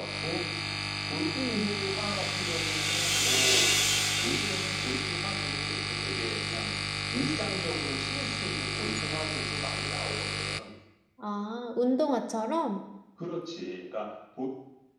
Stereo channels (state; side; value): identical; both; correlation 1.00